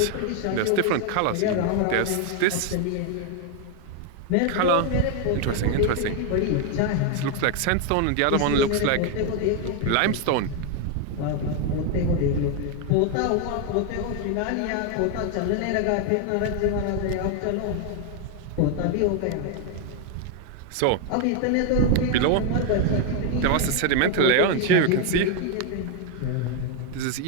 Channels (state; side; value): different; both; correlation 0.01